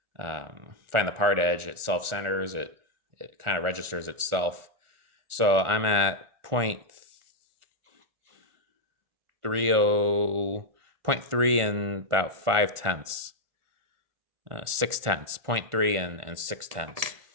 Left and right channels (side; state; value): left; late; 1.4 ms